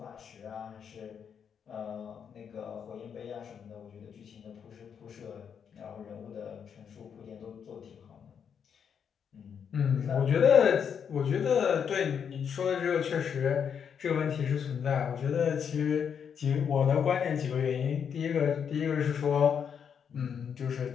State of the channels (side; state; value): right; quieter; 7.4 dB